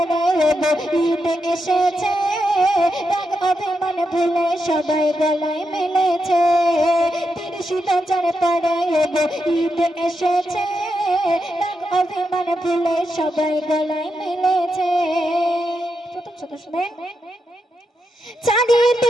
ঈদ এসেছে, দাগ অভিমান ভুলে সবাই গলায় মিলেছে। ৩০ যার পরে ঈদ এসেছে, দাগ অভিমান ভুলে সবাই গলায় মিলেছে। প্রথম শত শুনেন।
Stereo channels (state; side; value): normal; both; correlation 0.85